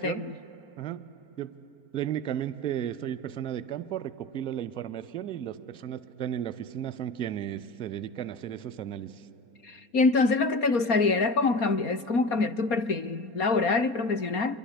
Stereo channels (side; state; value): right; late; 4.2 ms